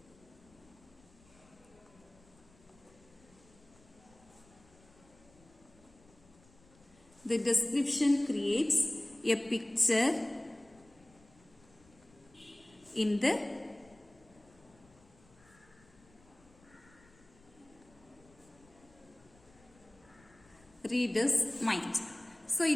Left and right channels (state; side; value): noise; left; rumble, 27 dB below the sound